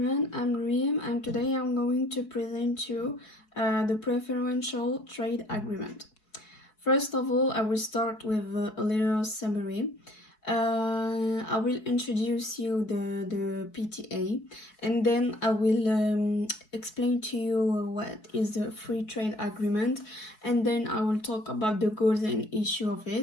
I'm Reem and today I'm going to present you the preferential trade agreement. First of all, I will start with a little summary. I will introduce you the PTA and then I will explain to you what is the free trade agreement, and then I will talk about the goals and issue of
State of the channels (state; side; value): late; right; 4.7 ms